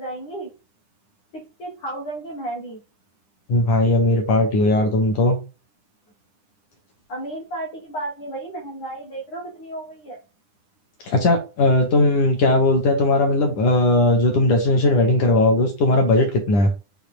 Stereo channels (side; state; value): right; late; 9.9 ms